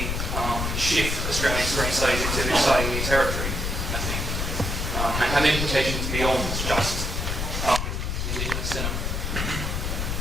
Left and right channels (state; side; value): noise; left; rumble, 1 dB below the sound